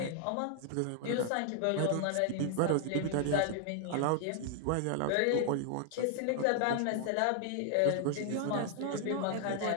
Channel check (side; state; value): both; different; correlation 0.00